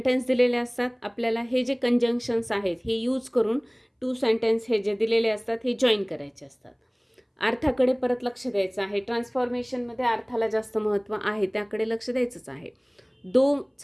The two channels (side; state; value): both; identical; correlation 1.00